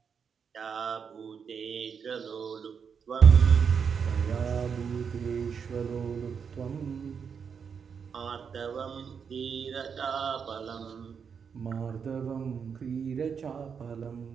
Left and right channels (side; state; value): left; quieter; 6.6 dB